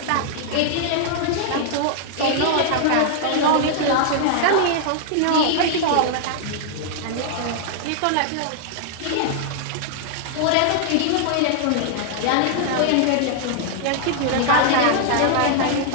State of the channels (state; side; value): different; both; correlation 0.00